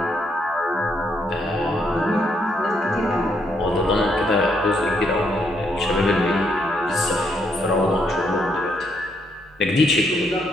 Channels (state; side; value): normal; both; correlation 0.74